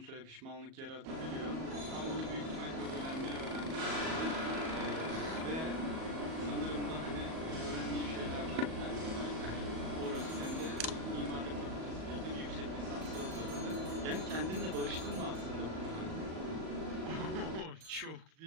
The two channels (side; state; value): left; late; 37 ms